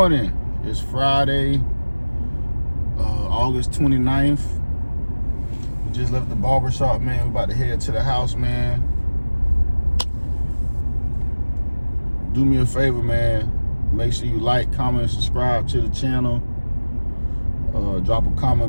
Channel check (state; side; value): inverted; both; correlation -1.00